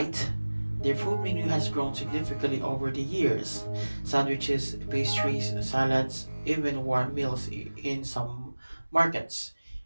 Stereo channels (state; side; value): inverted; both; correlation -1.00